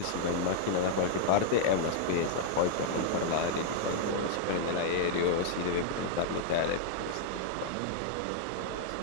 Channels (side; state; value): both; different; correlation -0.01